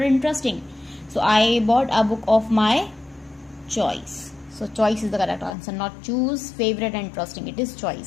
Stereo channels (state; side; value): drops out; right; at 5.5 s